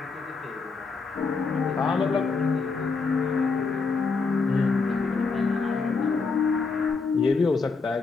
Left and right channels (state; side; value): quieter; right; 4.5 dB